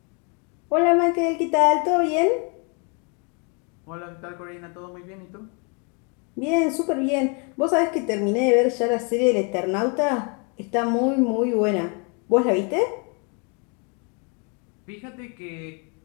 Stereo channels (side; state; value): right; quieter; 35.2 dB